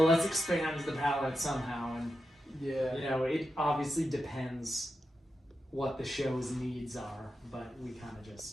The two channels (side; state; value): both; normal; correlation 0.89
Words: let's expand the palette somehow, and you know, it obviously depends what the show's needs are, but we kind of